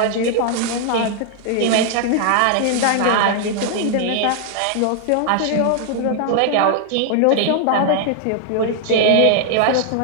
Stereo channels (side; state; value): both; different; correlation 0.00